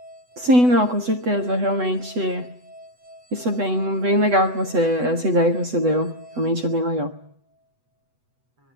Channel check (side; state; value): left; late; 8.1 ms